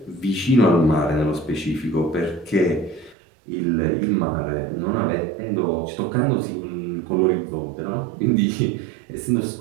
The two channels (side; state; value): left; drops out; at 3.2 s